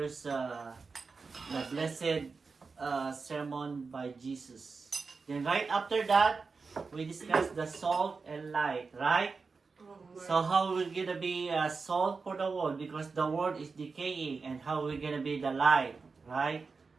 the blessed sermon by Jesus. Then right after that, we discussed the salt and light, right? So how we're gonna be salt for the world because the world is decaying, and how we're gonna be the light, right?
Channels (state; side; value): quieter; left; 4.6 dB